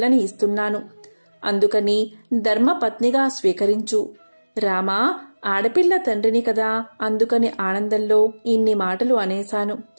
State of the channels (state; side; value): inverted; both; correlation -1.00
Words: ఇస్తున్నాను. అందుకని ధర్మపత్నిగా స్వీకరించు. రామా, ఆడపిల్ల తండ్రిని కదా, అందుకని ఆనందంలో ఇన్ని మాటలు అనేశాను.